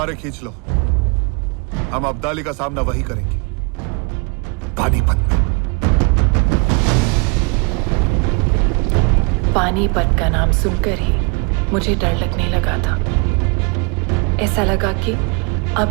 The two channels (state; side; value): quieter; left; 32.4 dB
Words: खींच लो, हम अब्दाली का सामना वही करेंगे, पानीपत में। पानीपत का नाम सुनकर ही मुझे डर लगने लगा था। ऐसा लगा कि